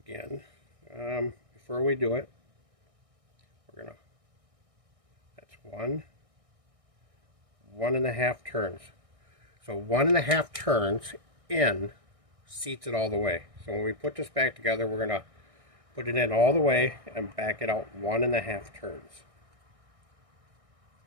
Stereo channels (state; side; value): late; left; 1.6 ms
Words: before we do it, we're gonna, that's 1.5 turns. So 1.5 turns in seats it all the way. So when we put this back together, we're gonna put it in all the way and back it out 1.5 turns.